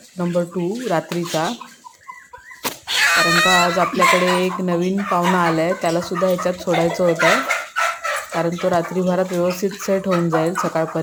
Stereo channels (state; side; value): identical; both; correlation 1.00